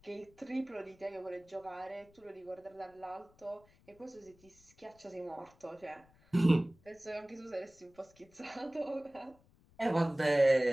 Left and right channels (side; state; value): left; noise; rumble, 29 dB below the sound